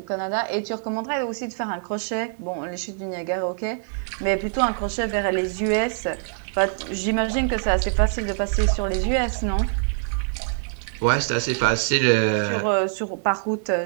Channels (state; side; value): silent; left; 57 dB below the other